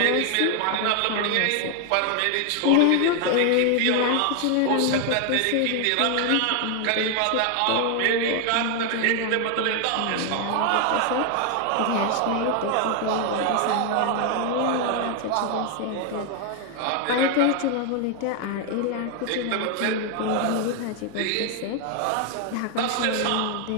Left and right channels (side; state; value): both; different; correlation 0.00